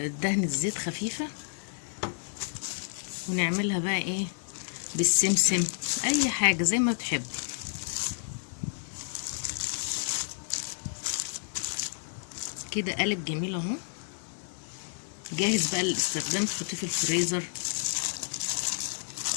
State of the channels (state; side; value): silent; right; 57 dB below the other